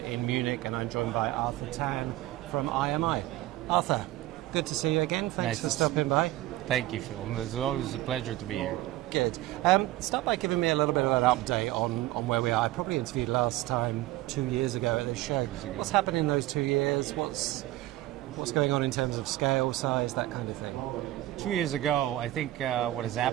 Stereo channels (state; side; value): quieter; left; 16.3 dB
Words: Munich, and I'm joined by Arthur Tan from IMI. Arthur, good to see you again. Thanks for stopping by. Thank you, Phil. It's always a pleasure to be here. Good. Start by giving me a little bit of an update on where we are. I probably interviewed last time 2 years ago at this show. What's happened in those 2 years? What's going on in terms of scale, size, that kind of thing? 2 years ago, I think what has